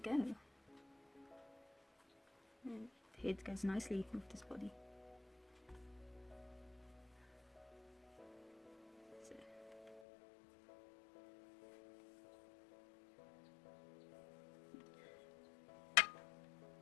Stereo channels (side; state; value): right; drops out; at 10.0 s